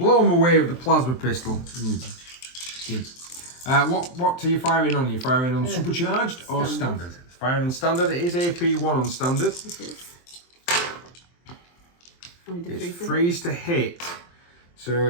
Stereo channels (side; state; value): right; late; 23 ms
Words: him away with the plasma pistol. What are you firing on? Are you firing on supercharged or standard? Firing on standard. It is AP1 on standard. It is. It's freeze to hit. So